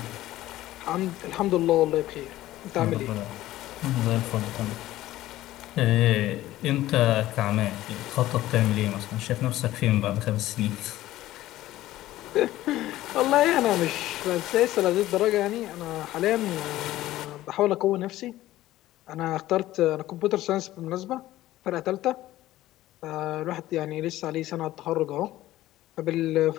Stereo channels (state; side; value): quieter; right; 15.3 dB